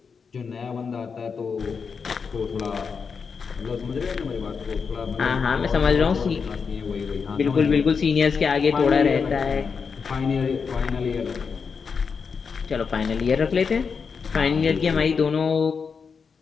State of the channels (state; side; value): quieter; right; 5.7 dB